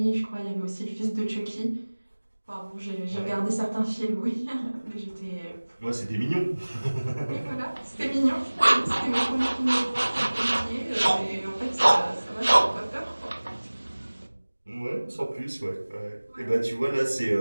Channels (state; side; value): inverted; both; correlation -1.00